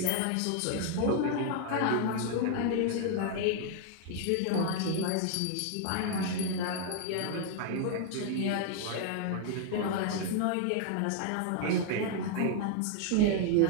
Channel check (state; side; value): different; both; correlation 0.00